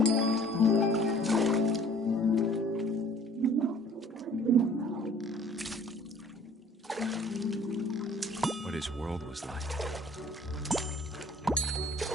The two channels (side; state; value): both; normal; correlation 0.53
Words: What his world was like.